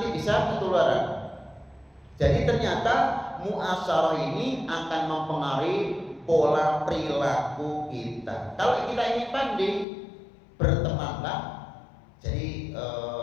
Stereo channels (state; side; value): drops out; right; at 9.9 s